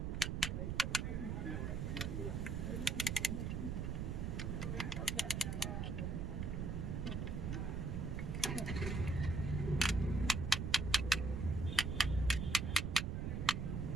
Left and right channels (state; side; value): noise; right; rumble, 1 dB below the sound